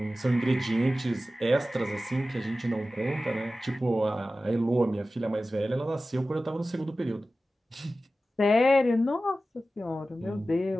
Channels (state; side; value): normal; both; correlation 0.95